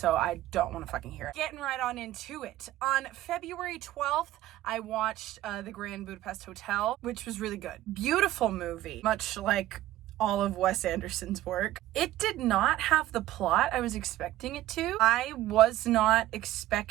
I don't want to fucking hear it. Getting right on into it. On February 12th, I watched The Grand Budapest Hotel, which was really good. Beautiful movie, much like all of Wes Anderson's work. It did not have the plot I was expecting it to. I was not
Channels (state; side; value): quieter; left; 14.8 dB